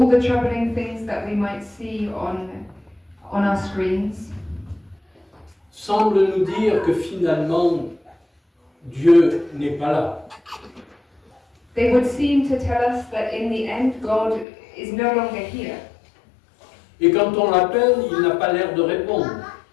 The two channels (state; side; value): drops out; right; at 14.5 s